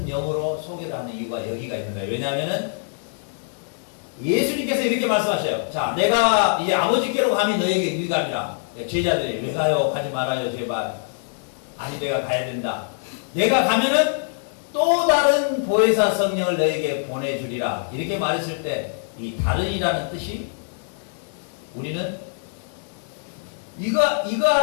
영으로 소개를 하는 이유가 여기가 있는 거예요. 왜냐하면은 예수님께서 이렇게 말씀하셔요. 자, 내가 이제 아버지께로 가면 너에게 유익함이라. 제자들이 왜 가요? 가지 말아요 제발. 아니 내가 가야 된다. 내가 가면은 또 다른 보혜사 성령을 너에게 보내주리라. 이렇게 말했을 때 이 다른이라는 뜻이 우리는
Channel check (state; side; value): silent; right; digital silence